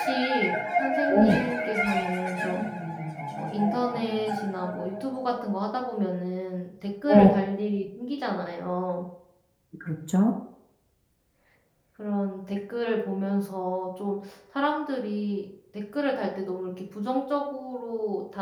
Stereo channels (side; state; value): both; identical; correlation 1.00